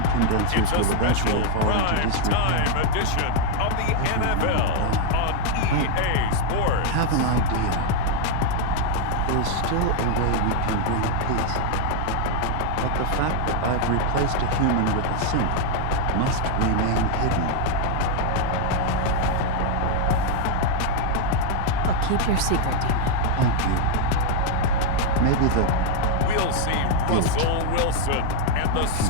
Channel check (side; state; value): both; different; correlation 0.01